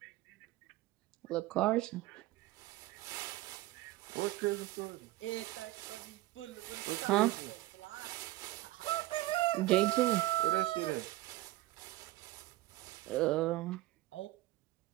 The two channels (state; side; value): quieter; left; 17.5 dB